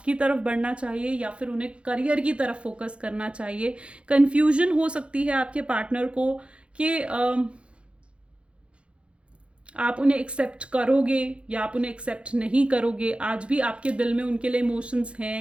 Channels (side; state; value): left; late; 0.059 ms